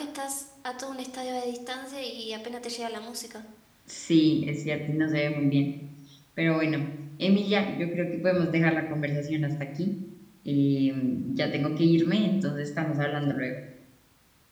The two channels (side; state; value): both; identical; correlation 1.00